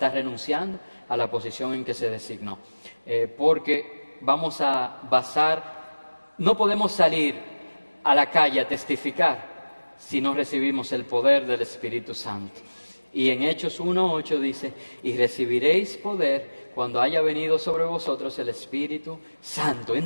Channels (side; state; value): both; inverted; correlation -1.00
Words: renunciando a la posición en que se designó. Porque vamos a no podemos salir a la calle a testificar si no recibimos el poder del Espíritu Santo. Y en Hechos 1:8 dice, y recibiréis poder cuando haya venido sobre vosotros el Espíritu Santo.